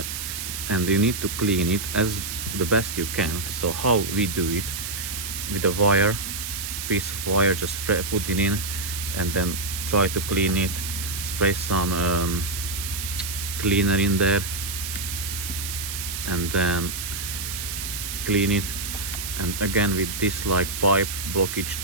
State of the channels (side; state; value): right; noise; hiss, 5 dB below the sound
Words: and you need to clean it as the best you can. So how we do it, with a wire, piece of wire, just put it in and then try to clean it, spray some cleaner in there, and then clean it. And again with this like pipe blockage